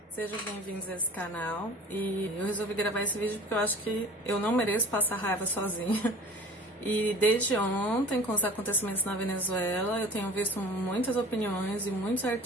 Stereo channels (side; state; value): both; normal; correlation 0.42